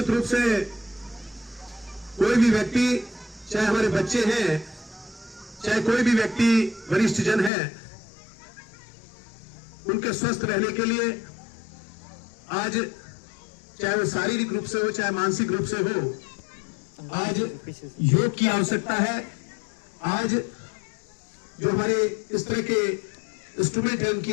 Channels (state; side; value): drops out; right; at 7.5 s